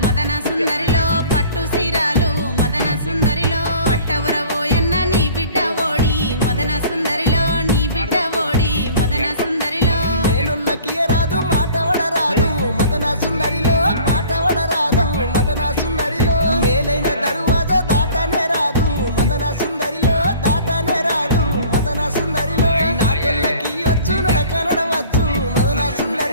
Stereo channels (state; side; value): inverted; both; correlation -0.48